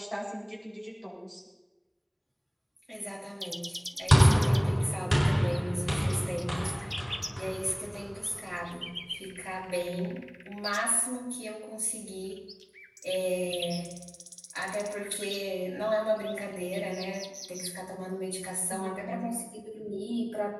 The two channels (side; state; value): both; identical; correlation 1.00